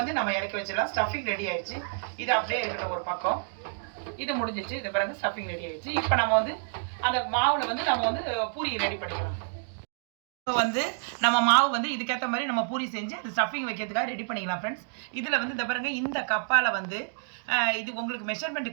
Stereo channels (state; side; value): silent; left; digital silence